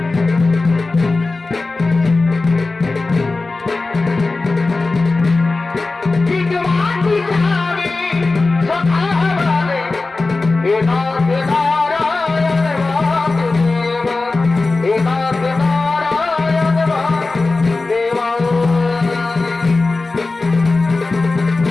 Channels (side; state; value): right; quieter; 3.5 dB